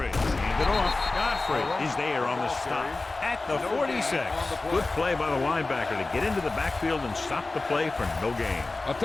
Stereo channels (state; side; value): quieter; right; 3.3 dB